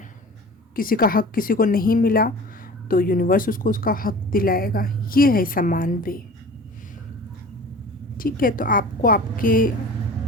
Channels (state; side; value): normal; both; correlation 0.40